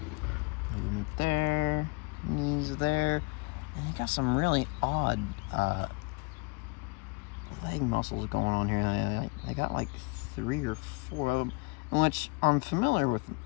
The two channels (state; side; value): quieter; right; 26.5 dB